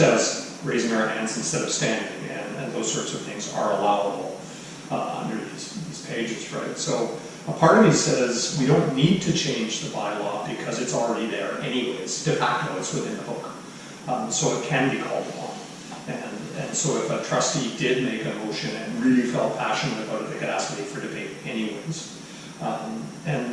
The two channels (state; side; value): identical; both; correlation 1.00